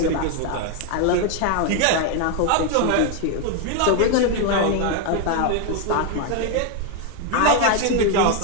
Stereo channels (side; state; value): both; different; correlation 0.01